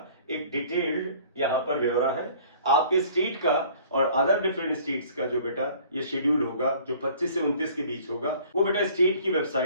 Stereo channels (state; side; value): inverted; both; correlation -0.52